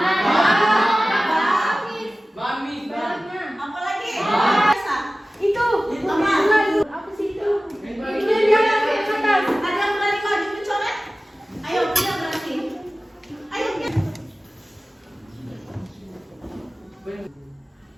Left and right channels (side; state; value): both; normal; correlation 0.97